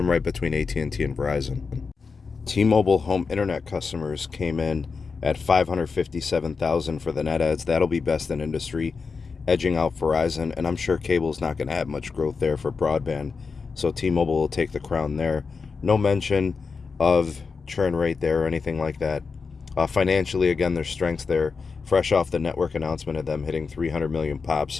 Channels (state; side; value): quieter; right; 4.9 dB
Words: right between AT&T and Verizon. T-Mobile home internet customers came in at 557,000 for the net adds. That'll be best in industry, edging out Verizon, and I'm sure cable's not going to have much growth there for broadband, so T-Mobile will take the crown there. No mention of churn rate there or anything like that. Financially, again, there's strengths there, fresh off the network announcement of them hitting 300 million